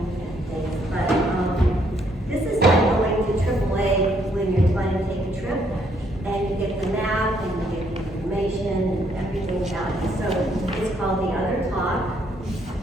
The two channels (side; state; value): both; normal; correlation 0.70